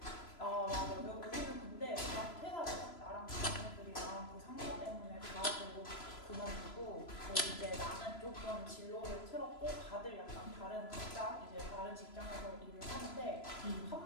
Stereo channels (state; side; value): late; right; 3.0 ms